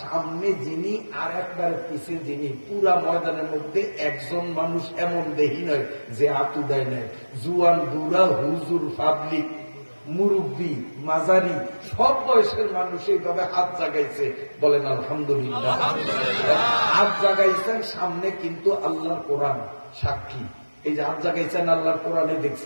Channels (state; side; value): inverted; both; correlation -1.00